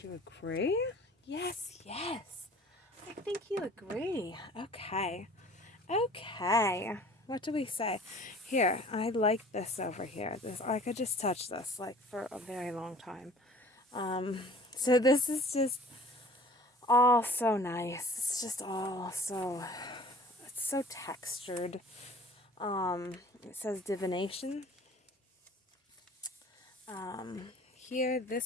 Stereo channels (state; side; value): normal; both; correlation 0.48